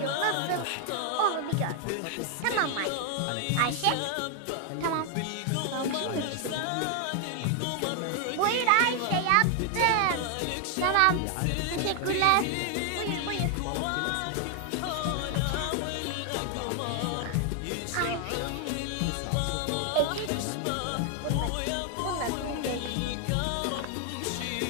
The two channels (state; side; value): different; both; correlation 0.00